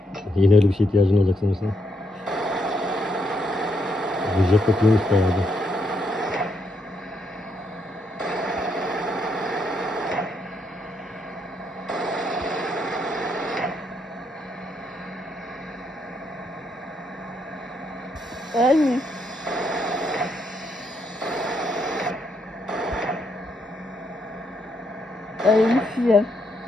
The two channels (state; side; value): normal; both; correlation 0.77